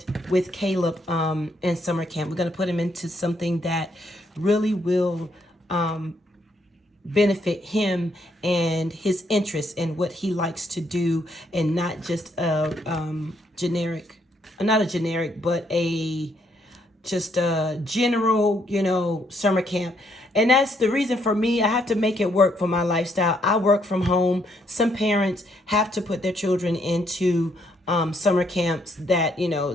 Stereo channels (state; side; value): normal; both; correlation 0.72